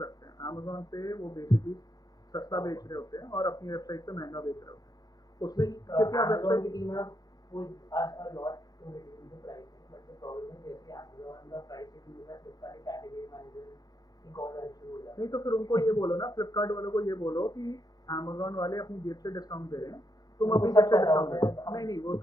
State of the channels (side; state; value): right; late; 0.19 ms